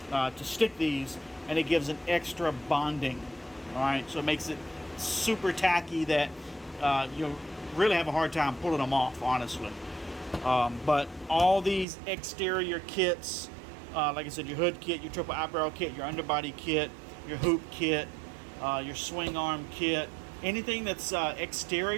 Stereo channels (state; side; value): drops out; left; at 11.9 s